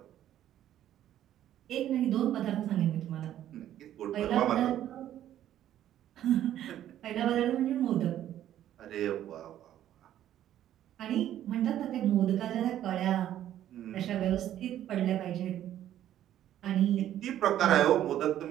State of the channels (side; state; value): left; quieter; 11.8 dB